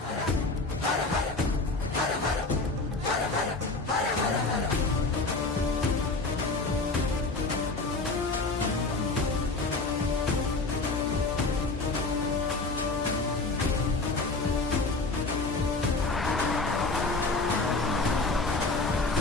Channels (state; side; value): quieter; right; 3.5 dB